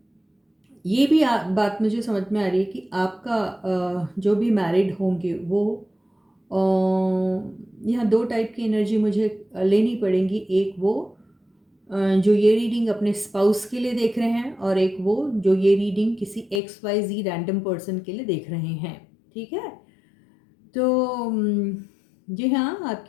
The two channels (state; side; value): drops out; right; at 16.6 s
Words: ये भी बात मुझे समझ में आ रही है कि आपका जो भी मैरिड होंगे वो यहाँ दो टाइप की एनर्जी मुझे लेनी पड़ेंगी। एक वो जो ये रीडिंग अपने स्पाउस के लिए देख रहे हैं और एक वो जो ये रीडिंग किसी XYZ रैंडम पर्सन के लिए देख रहे हैं, ठीक है। तो जी हाँ,